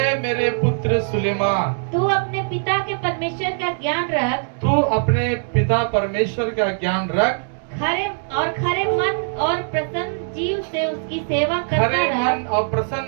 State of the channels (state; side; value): silent; left; digital silence